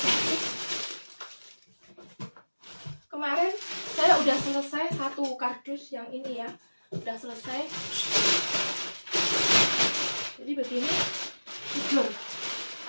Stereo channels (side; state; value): both; inverted; correlation -1.00